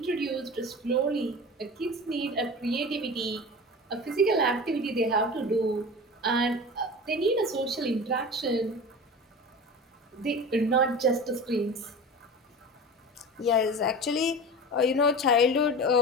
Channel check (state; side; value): normal; both; correlation 0.33